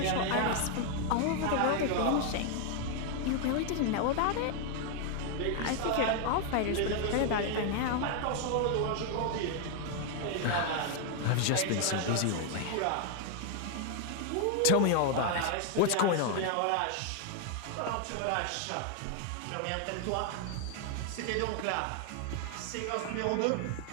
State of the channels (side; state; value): both; different; correlation 0.00